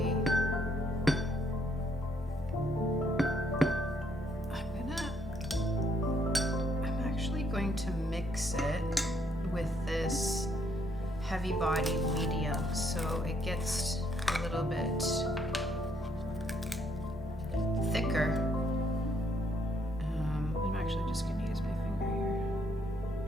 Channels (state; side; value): normal; both; correlation 0.71